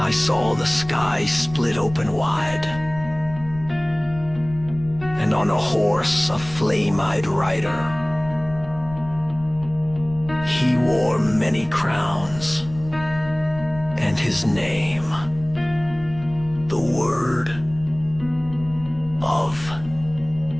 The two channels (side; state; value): left; noise; rumble, 15 dB below the sound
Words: saw the sky split open wide, and on a horse a flame-eyed rider. He wore many crowns, and his name, the Word of